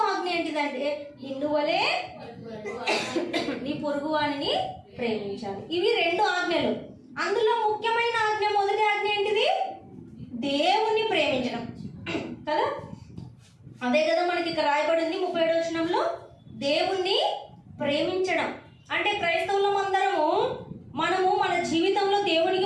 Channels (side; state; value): both; identical; correlation 1.00